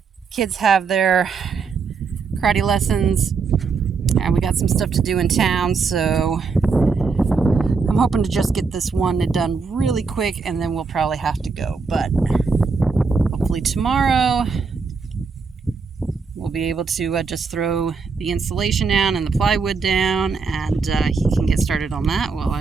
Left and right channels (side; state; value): left; quieter; 4.9 dB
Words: kids have their karate lessons, and we got some stuff to do in town, so I'm hoping to just get this one done really quick, and then we'll probably have to go. But hopefully tomorrow we'll be able to just throw the insulation down and the plywood down, and he can get started on that while